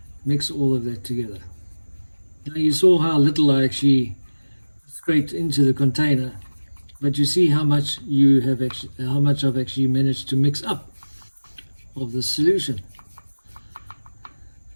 mix all of that together. Now, you saw how little I actually scraped into the container, but you see how much I've actually managed to mix up of the solution.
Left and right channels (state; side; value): inverted; both; correlation -1.00